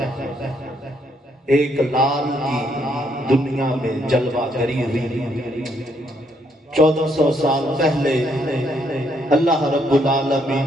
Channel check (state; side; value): normal; both; correlation 0.72